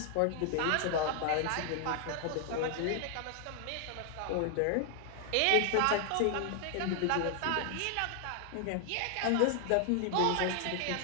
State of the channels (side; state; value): both; different; correlation 0.00